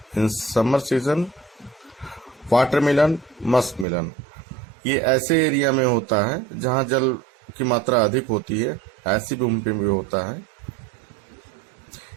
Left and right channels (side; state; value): left; drops out; at 3.9 s